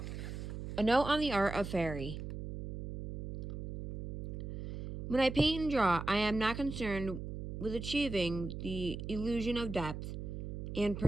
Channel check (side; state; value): right; noise; hum, 7 dB below the sound